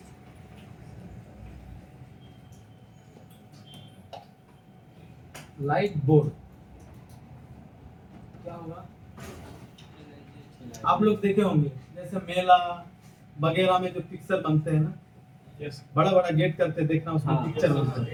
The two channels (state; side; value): identical; both; correlation 1.00